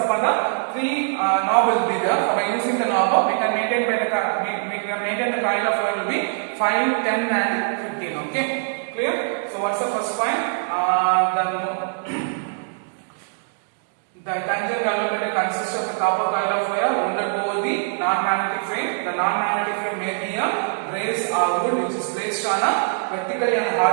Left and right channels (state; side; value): silent; left; digital silence